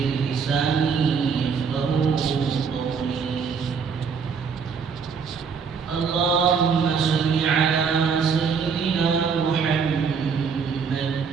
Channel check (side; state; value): left; quieter; 6.0 dB